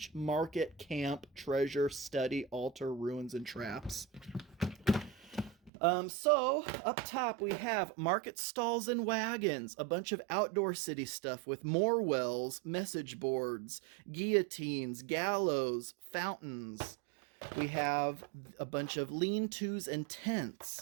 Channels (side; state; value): left; drops out; at 5.7 s